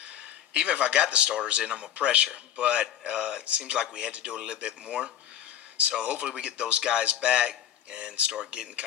Even if I got the starters in, I'm a pressure. But it seems like we had to do a little bit more. So hopefully we get those guys back and start getting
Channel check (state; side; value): quieter; right; 10.7 dB